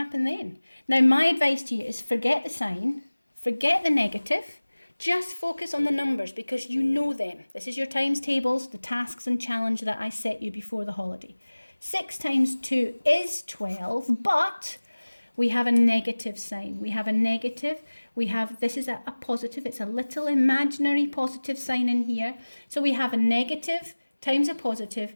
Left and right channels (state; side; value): inverted; both; correlation -1.00